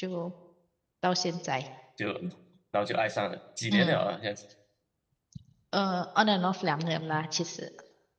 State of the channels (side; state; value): both; identical; correlation 1.00